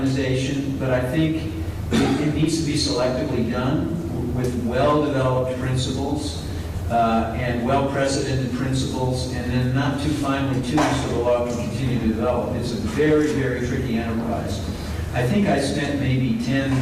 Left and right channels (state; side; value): identical; both; correlation 1.00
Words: but I think it needs to be selectively done with well-developed principles and well-precedented principles, and then not too finely tuned so the law can continue to develop. It's a very, very tricky enterprise. I think I spent maybe 10,